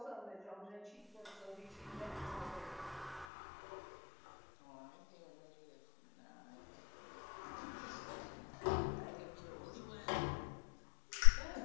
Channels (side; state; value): right; drops out; at 3.2 s